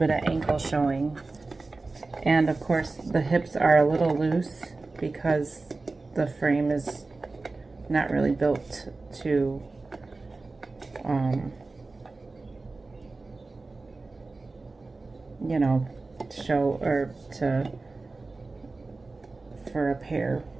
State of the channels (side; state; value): left; quieter; 3.5 dB